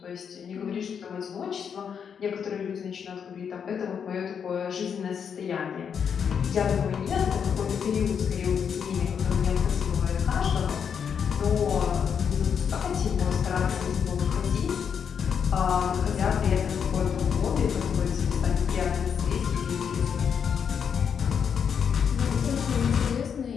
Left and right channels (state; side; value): quieter; right; 7.2 dB